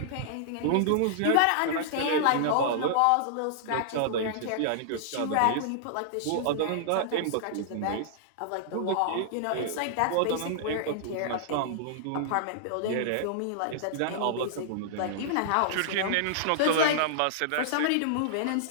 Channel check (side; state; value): both; different; correlation -0.01